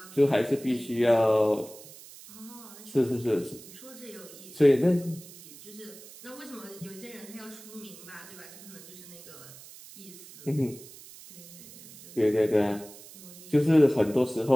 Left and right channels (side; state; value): right; noise; hiss, 18 dB below the sound